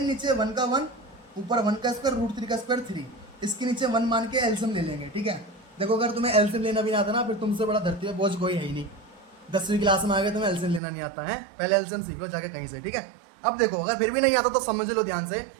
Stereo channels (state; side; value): drops out; left; at 10.8 s